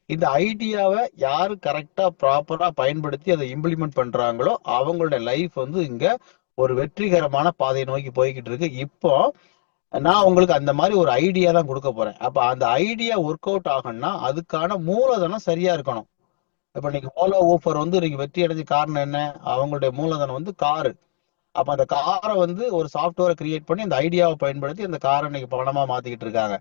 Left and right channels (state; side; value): silent; right; digital silence